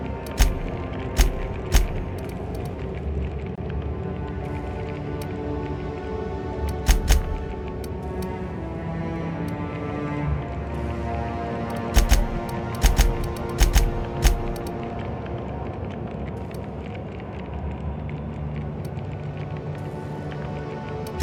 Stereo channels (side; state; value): both; identical; correlation 1.00